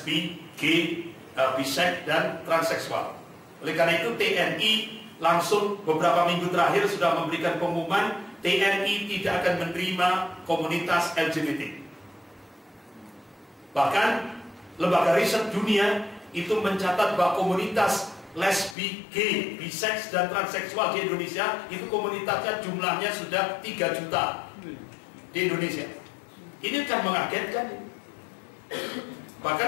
gay, biseks dan transseksual. Oleh karena itu TNI langsung beberapa minggu terakhir sudah memberikan pengumuman TNI tidak akan menerima komunitas LGBT. Bahkan lembaga riset dunia itu mencatat bahwa komunitas lesbi, gay, biseks dan transseksual di Indonesia itu komunitasnya jumlahnya sudah 3 juta di Indonesia. Ini kan mengagetkan.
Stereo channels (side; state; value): right; drops out; at 18.8 s